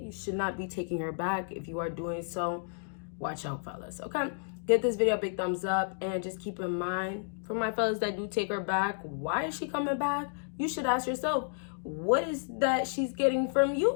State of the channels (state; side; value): silent; right; digital silence